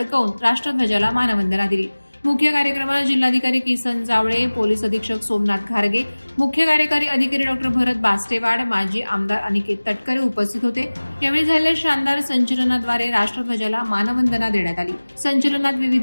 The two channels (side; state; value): both; inverted; correlation -1.00